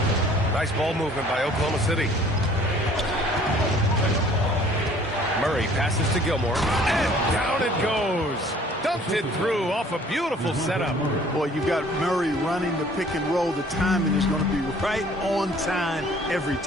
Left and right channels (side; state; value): both; normal; correlation 0.54